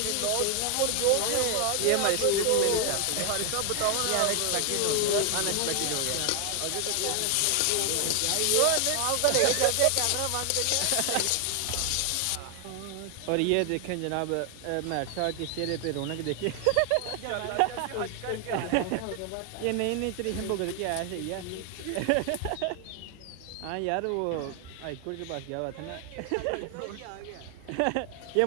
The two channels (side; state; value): both; different; correlation 0.00